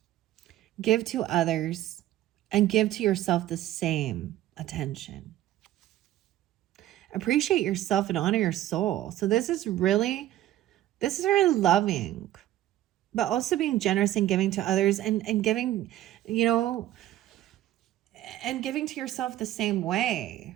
Give to others and give to yourself the same attention. Appreciate yourself and honor your soul. So this is really loving, but also being generous and giving to others, and giving, and giving to yourself the same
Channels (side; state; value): left; quieter; 13.8 dB